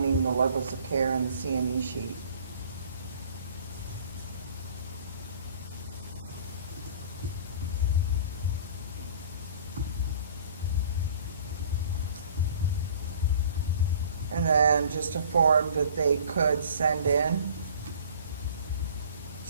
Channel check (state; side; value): inverted; both; correlation -0.49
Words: the levels of care in the CME sheet. just a form that they could send in